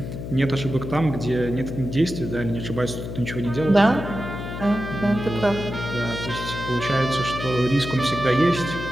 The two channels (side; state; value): left; noise; hum, 7 dB below the sound